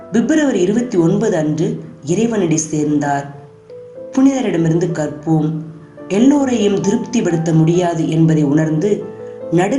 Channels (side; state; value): both; identical; correlation 1.00